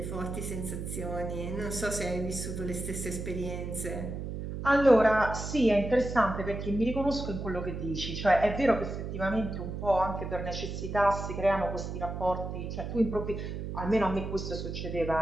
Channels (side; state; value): right; noise; hum, 6 dB below the sound